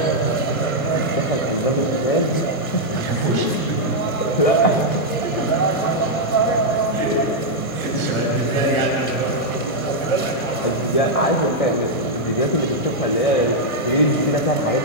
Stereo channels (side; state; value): right; late; 1.1 ms